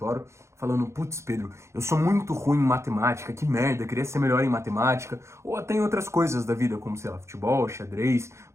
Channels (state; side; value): late; left; 0.13 ms